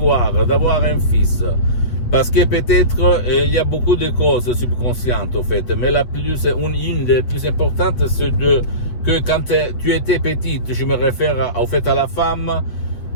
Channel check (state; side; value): late; right; 8.2 ms